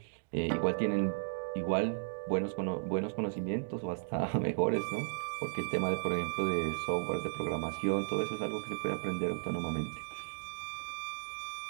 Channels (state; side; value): silent; left; digital silence